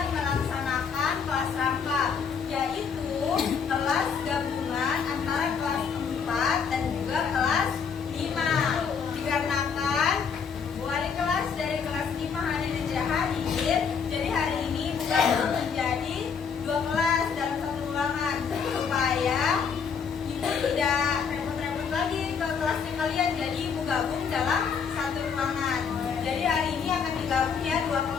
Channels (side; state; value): right; quieter; 6.3 dB